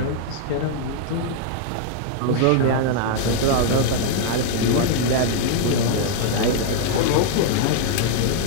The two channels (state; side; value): different; both; correlation 0.00